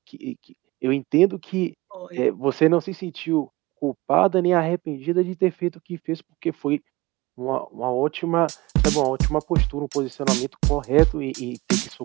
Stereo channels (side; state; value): left; quieter; 21.5 dB